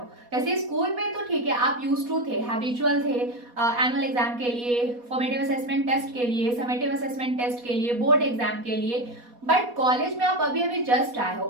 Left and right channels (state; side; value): late; left; 4.2 ms